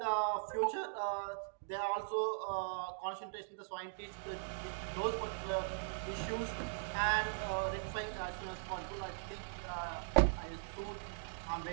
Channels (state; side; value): silent; left; digital silence